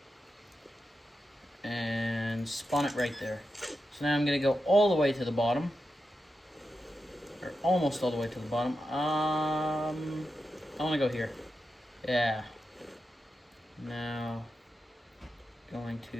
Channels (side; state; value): both; normal; correlation 0.89